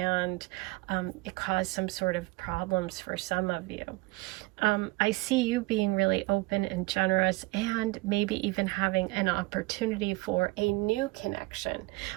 it caused some sort of problems for some of you. I see you being really open and generous, and maybe even having an opportunity for a new connection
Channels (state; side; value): quieter; left; 22.6 dB